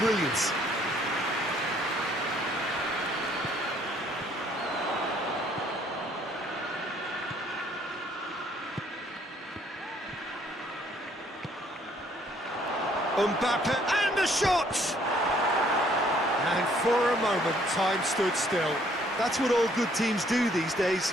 Mbappe, and the shot! And for a moment, time stood still. That's what all good teams do these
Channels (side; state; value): both; normal; correlation 0.64